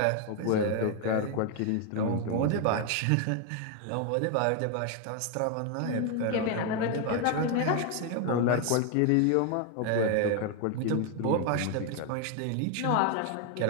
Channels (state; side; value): different; both; correlation 0.01